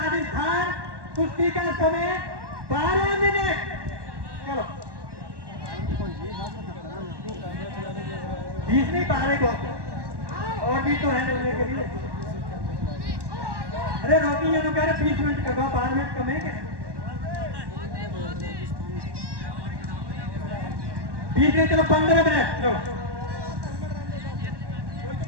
कुश्ती का समय 12 मिनट। चलो 20 नहीं, 12 को और भी तो है लेने के लिए। अरे रोकी, ये तो कह रहे 20 मिनट का, 12 मिनट कम है क्या? 20 नहीं, चलो 15 मिनट।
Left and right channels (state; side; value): late; left; 1.1 ms